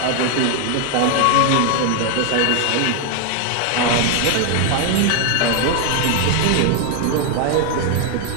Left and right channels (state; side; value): different; both; correlation 0.00